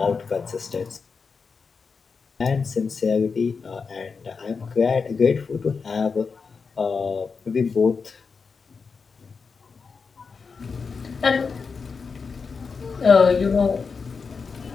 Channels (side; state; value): right; quieter; 5.1 dB